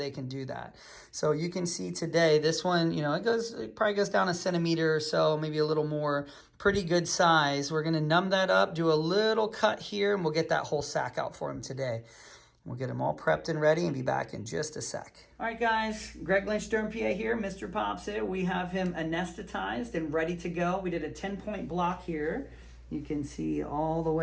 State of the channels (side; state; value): both; identical; correlation 1.00